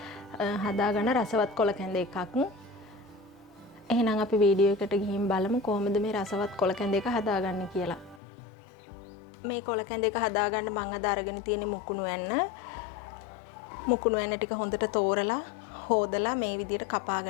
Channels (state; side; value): drops out; right; at 8.2 s